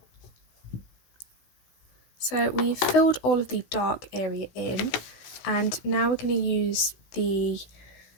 So we've filled all of the dark area in, And now we're going to use the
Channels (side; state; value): right; late; 16 ms